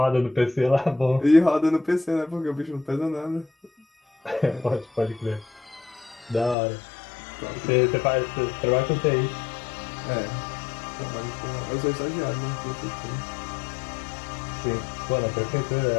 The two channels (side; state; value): right; drops out; at 6.6 s